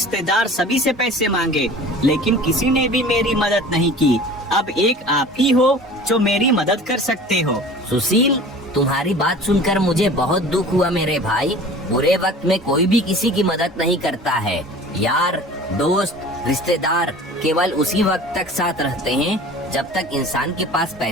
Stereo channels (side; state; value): both; normal; correlation 0.42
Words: सभी से पैसे मांगे, लेकिन किसी ने भी मेरी मदद नहीं की। अब एक आप ही हो जो मेरी मदद कर सकते हो। सुशील, तुम्हारी बात सुनकर मुझे बहुत दुख हुआ मेरे भाई। बुरे वक्त में कोई भी किसी की मदद नहीं करता है। यार दोस्त रिश्तेदार केवल उसी वक्त तक साथ रहते हैं जब तक इंसान के पास